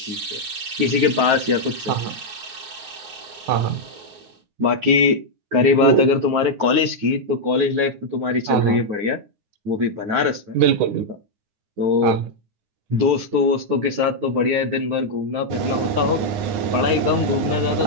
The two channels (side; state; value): left; late; 9.6 ms